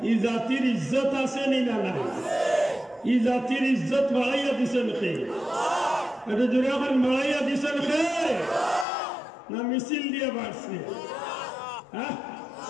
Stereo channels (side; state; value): right; drops out; at 8.8 s